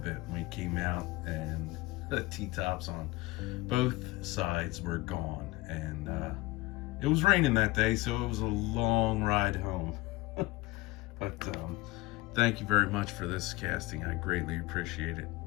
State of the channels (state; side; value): quieter; right; 20.8 dB